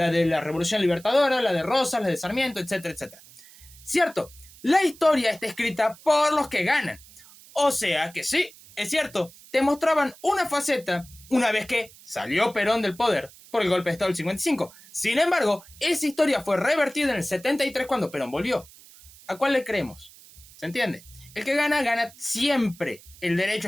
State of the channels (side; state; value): right; noise; hiss, 22 dB below the sound